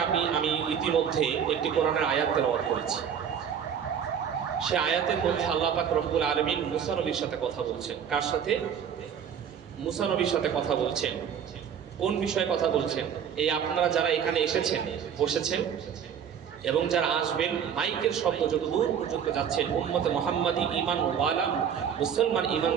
আমি ইতিমধ্যে একটি কোরআনের আয়াত তেলাওয়াত করেছি। সে আয়াতের মধ্যে আল্লাহ পাক রব্বুল আলামিন মুসা নবীর সাথে কথা বলছেন। কার সাথে? মুসা নবীর সাথে কথা বলছেন। কোন বিষয়ে কথা বলছেন? এই আপনারা যারা এখানে এসেছেন, বসেছেন, এবং যারা আসবেন, মাইকের শব্দ যত দূর পর্যন্ত যাচ্ছেন, উম্মতে মুহাম্মাদি ঈমান ওয়ালা মুসলমান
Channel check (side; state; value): left; quieter; 8.1 dB